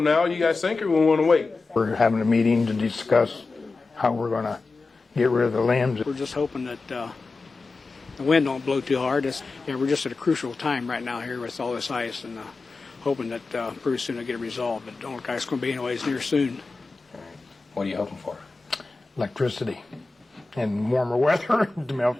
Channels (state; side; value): quieter; right; 3.8 dB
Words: now, you guys think, or we want to wait? We're having a meeting to discuss how we're going to get rid of the limbs. We're just hoping that the wind don't blow too hard. We're just at a crucial time right now here with all this ice, and hoping that pretty soon it'll get resolved. But don't look like it's going to be anyways near soon. What are you hoping for? Electricity and warmer weather to melt